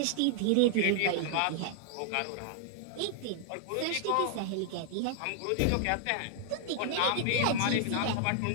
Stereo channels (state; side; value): different; both; correlation -0.01